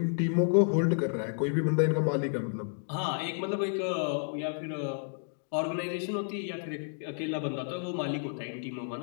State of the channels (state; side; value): silent; right; digital silence